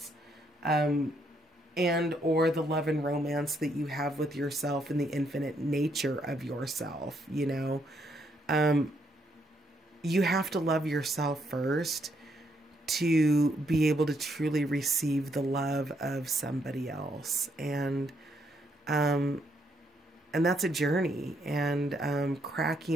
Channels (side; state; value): both; normal; correlation 0.74